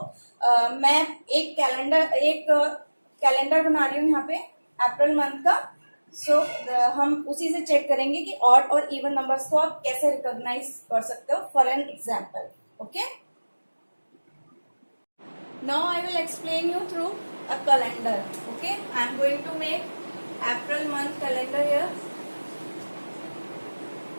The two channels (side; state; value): both; inverted; correlation -1.00